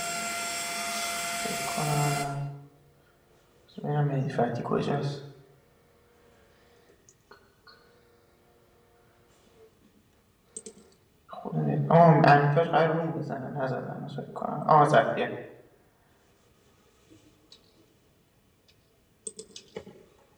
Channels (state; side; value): identical; both; correlation 1.00